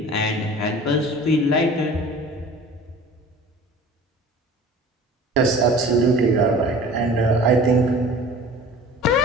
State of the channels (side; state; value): both; normal; correlation 0.43